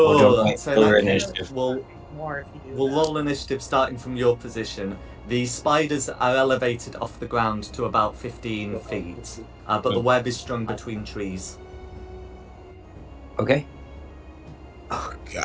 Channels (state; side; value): identical; both; correlation 1.00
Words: Cool. want to wait So in till that your case, initiative? More if you do we'll that. roll initiative starting from your position. The spiders are elevated off the ground to about 15 feet, but the web is strung between trees. Okay. Oh